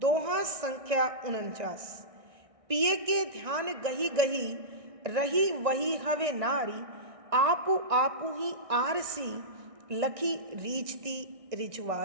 संख्या 49। पिए के ध्यान गही गही, रही वही हवे नारी, आपु आपु ही आरसी, लखी रीझती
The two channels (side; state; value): left; late; 1.6 ms